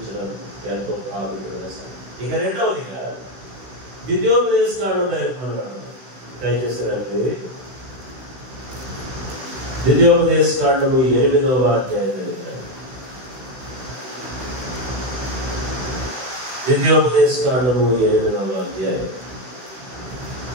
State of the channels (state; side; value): late; left; 16 ms